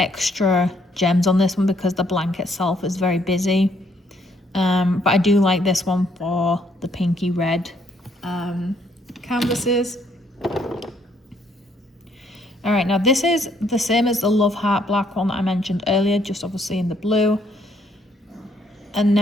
gems on this one because the blank itself is very busy. But I do like this one for the pinky red canvases. All right, now this is the same as the Love Heart black one that I mentioned earlier, just obviously in the blue. And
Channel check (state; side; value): normal; both; correlation 0.69